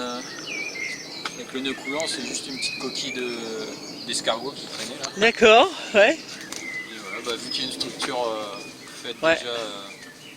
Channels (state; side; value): identical; both; correlation 1.00